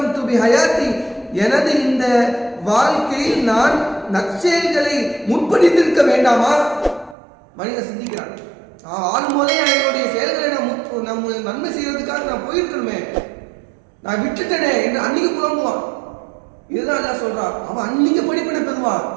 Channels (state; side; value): drops out; left; at 7.2 s